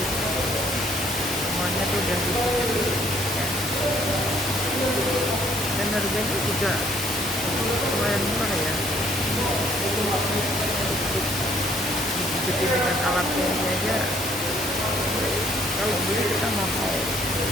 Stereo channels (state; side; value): normal; both; correlation 0.63